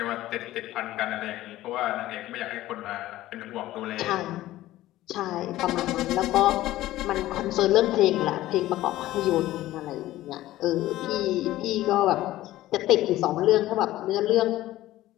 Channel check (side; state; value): right; quieter; 15.5 dB